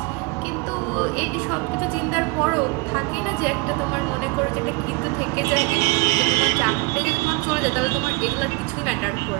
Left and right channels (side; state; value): left; quieter; 26.9 dB